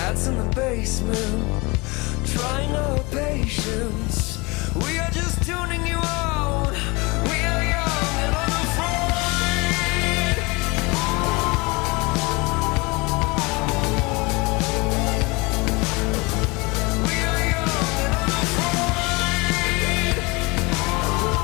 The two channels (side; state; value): right; quieter; 26.0 dB